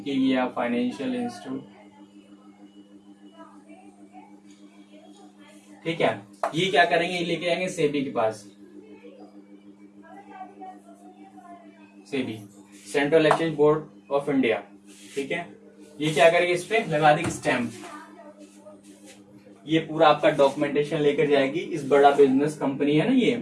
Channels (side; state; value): both; identical; correlation 1.00